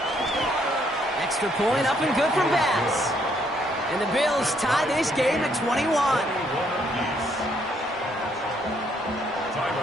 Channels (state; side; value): normal; both; correlation 0.70